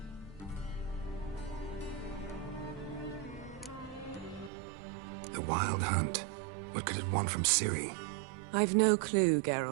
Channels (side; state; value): left; drops out; at 4.5 s